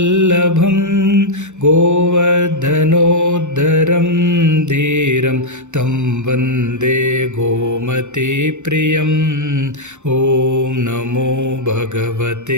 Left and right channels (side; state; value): left; late; 0.83 ms